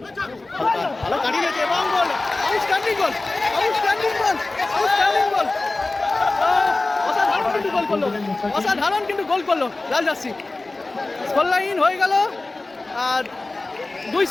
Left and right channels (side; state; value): right; quieter; 3.1 dB